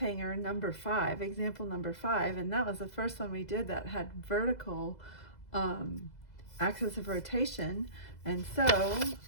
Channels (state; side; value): late; right; 2.0 ms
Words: number 5, example number 5, and that was the first one we did that had vertical axis of rotation. And so,